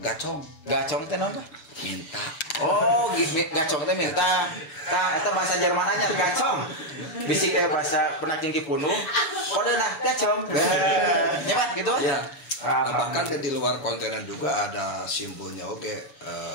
gacong. Gacong teh naon, Pak? Minta. Oh, gacong teh minta. Tah eta bahasa Jermananya gacong. Bisi kayak bahasa penaking Kipunuk. Kode nah gacong. Nyaman gitu? Iya. Bahkan di luar kontenan juga ada simbolnya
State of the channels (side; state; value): right; late; 6.9 ms